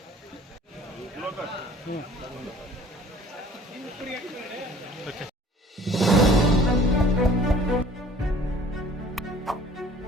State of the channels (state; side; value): normal; both; correlation 0.51